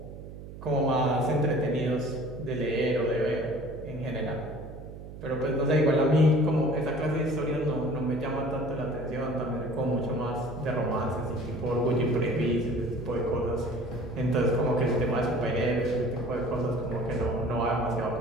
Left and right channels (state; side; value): noise; right; hum, 13 dB below the sound